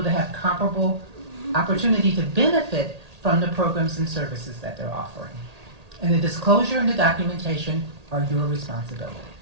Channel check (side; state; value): left; late; 1.8 ms